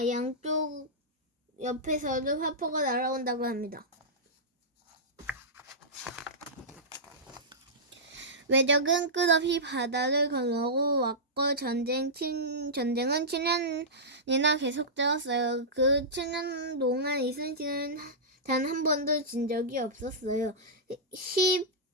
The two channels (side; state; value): both; normal; correlation -0.14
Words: 양쪽 옆에서도 화포가 날아온다고 합니다. 외적은 끝없이 바다를 건너고 왔고 전쟁은 7년이나 계속되었어요. 그 7년 동안 이순신은 단 한 번도 진 적이 없었어요.